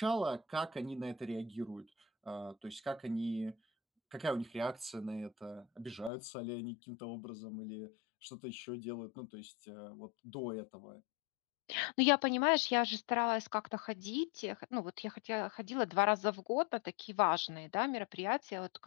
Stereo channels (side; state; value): right; drops out; at 6.1 s